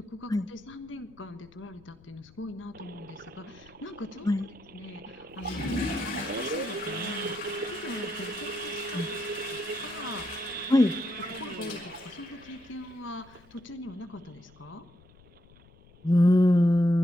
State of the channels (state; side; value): noise; left; rumble, 26 dB below the sound